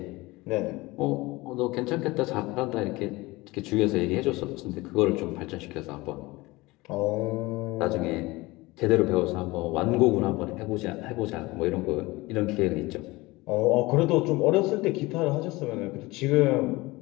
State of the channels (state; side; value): quieter; right; 21.5 dB